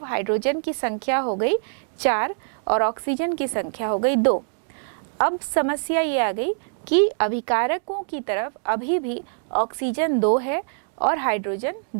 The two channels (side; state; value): left; silent; digital silence